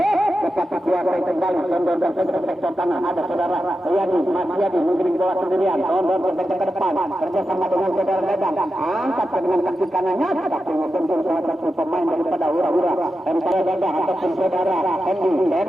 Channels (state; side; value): normal; both; correlation 0.90